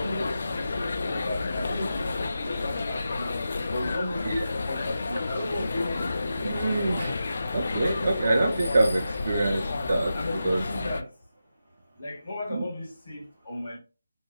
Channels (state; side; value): inverted; both; correlation -0.90